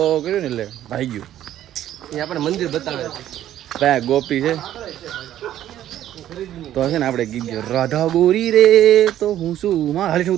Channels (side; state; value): left; quieter; 12.1 dB